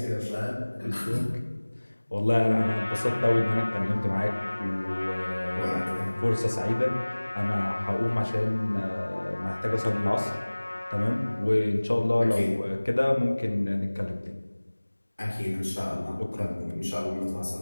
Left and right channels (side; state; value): both; inverted; correlation -1.00